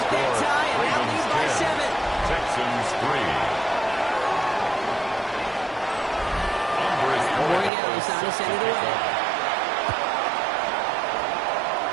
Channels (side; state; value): left; drops out; at 7.7 s